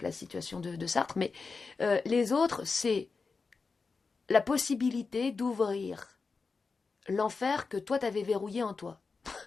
la situation de Sartre, mais les autres c'est la possibilité d'ouvrir l'enfer que toi t'avais verrouillé en toi.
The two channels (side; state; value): right; quieter; 4.5 dB